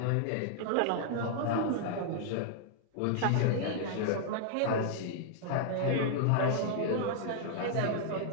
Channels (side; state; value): both; different; correlation -0.01